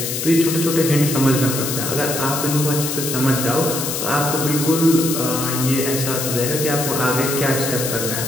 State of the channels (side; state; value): left; noise; hiss, 3 dB below the sound